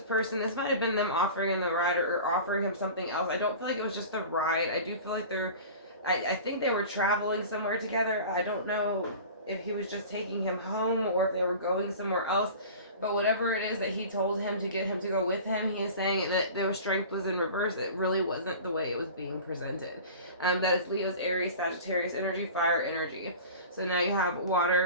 might have been them offering him the ride or offering him something else. I don't feel like it was just the ride. I do feel like I think they were traveling somewhere together. I don't know if he was just taking him home or if they were going somewhere else. But whatever it is that he told him to get him to go with him, he is saying that their strength was in reverse. It really wasn't the way it was being presented. That is Leo's, Aries, Sagittarius energy, fire energy. So now you have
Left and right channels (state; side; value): inverted; both; correlation -0.38